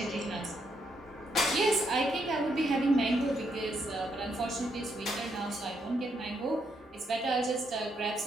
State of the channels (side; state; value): both; normal; correlation 0.77